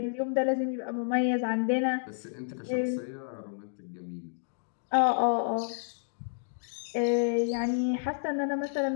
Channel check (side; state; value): right; silent; digital silence